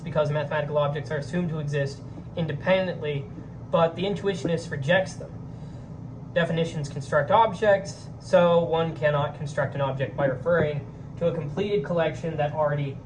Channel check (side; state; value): both; identical; correlation 1.00